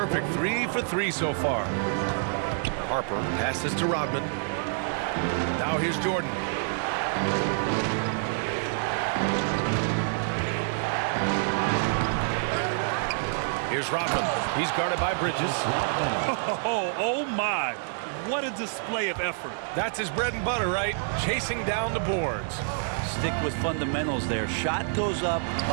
3 for 3 so far. Harper passes to Rodman. Now here's Jordan. Here's Rodman. He's guarded by Bridges. Oh my. What a display of effort. That's his bread and butter, right? Chasing down the boards. Stick with fundamentals there. Shot goes up,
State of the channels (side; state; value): left; silent; digital silence